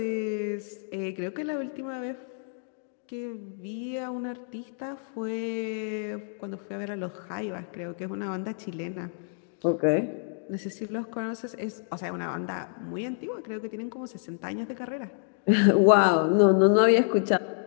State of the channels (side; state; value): right; silent; digital silence